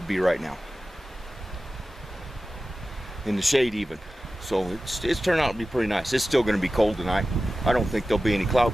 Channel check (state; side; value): normal; both; correlation 0.95